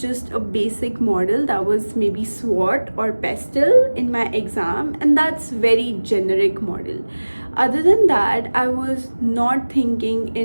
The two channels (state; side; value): inverted; both; correlation -1.00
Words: just a basic model that was maybe SWOT or PESTEL in my exam, and that's very generic model. Other than that, I was not